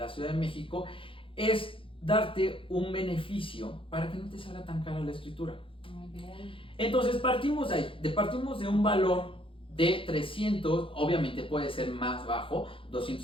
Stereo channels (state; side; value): late; right; 0.25 ms